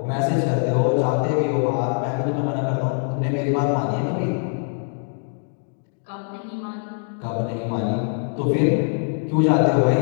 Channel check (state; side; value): silent; right; 63 dB below the other